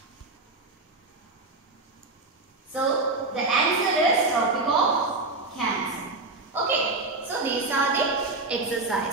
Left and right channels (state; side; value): quieter; left; 3.2 dB